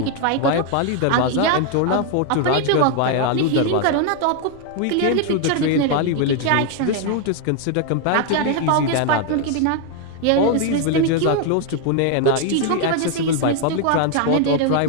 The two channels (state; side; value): different; both; correlation 0.01